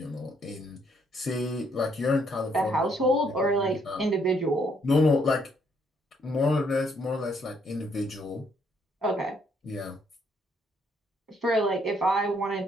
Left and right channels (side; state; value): both; normal; correlation 0.70